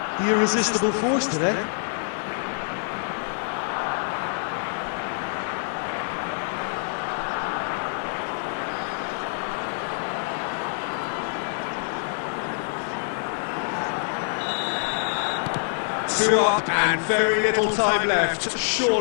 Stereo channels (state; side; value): silent; right; 56 dB below the other